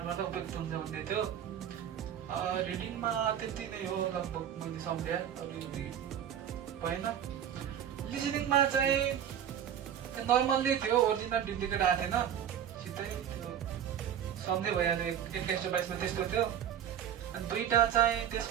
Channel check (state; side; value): quieter; left; 9.7 dB